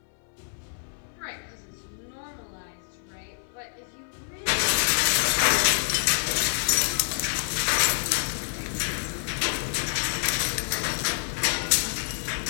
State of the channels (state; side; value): silent; right; 60 dB below the other